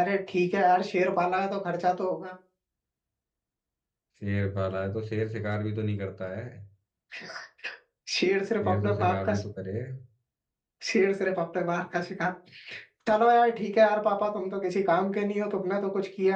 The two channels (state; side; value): identical; both; correlation 1.00